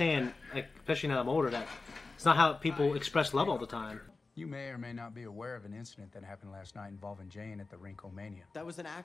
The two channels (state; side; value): quieter; right; 3.8 dB